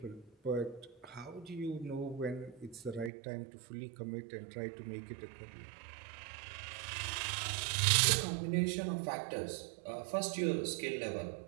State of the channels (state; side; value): drops out; left; at 3.1 s